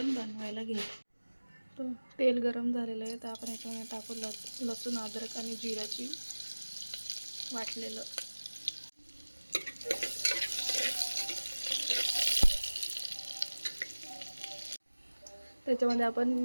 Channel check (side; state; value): both; inverted; correlation -1.00